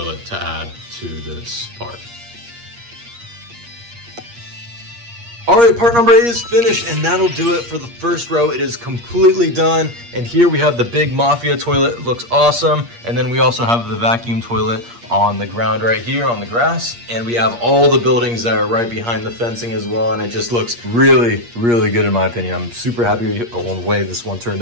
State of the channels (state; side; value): late; left; 8.5 ms